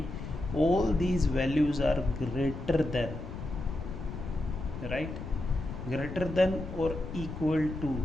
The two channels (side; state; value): left; noise; rumble, 8 dB below the sound